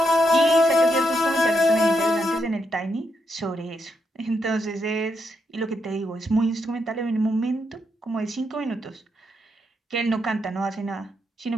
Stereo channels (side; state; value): both; normal; correlation 0.81